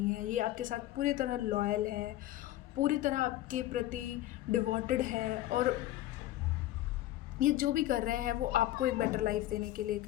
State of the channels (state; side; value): quieter; right; 14.7 dB